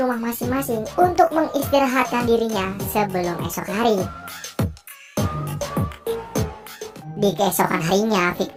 rumah masing-masing untuk mengistirahatkan dirinya sebelum esok hari. Di keesokan harinya,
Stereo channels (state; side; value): identical; both; correlation 1.00